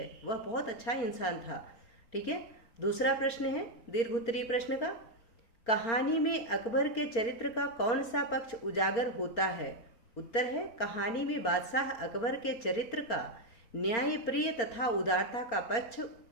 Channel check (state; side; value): late; right; 4.4 ms